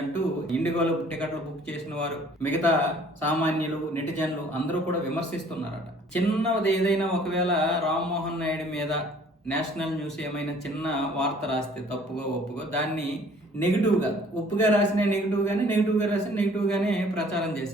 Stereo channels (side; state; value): both; normal; correlation 0.55